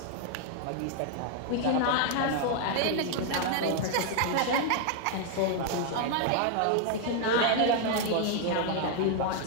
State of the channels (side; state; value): both; different; correlation 0.00